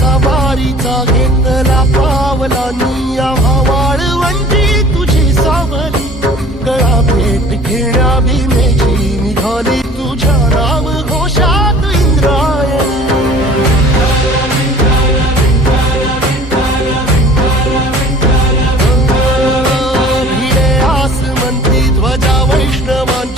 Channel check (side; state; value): both; normal; correlation 0.47